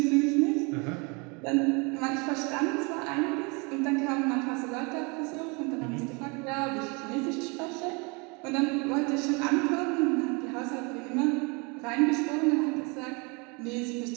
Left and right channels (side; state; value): left; quieter; 30.2 dB